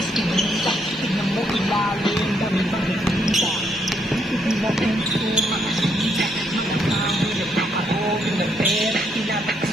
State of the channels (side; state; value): both; normal; correlation 0.74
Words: iskinita. Tignan mo ilalim, dami bang nagkita. Hindi na puso, makasita. Mga tao, nagpapahogin ng pera. Tinatakas